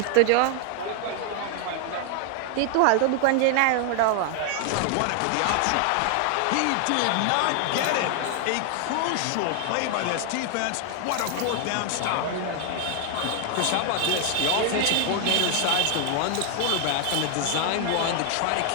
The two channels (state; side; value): different; both; correlation 0.00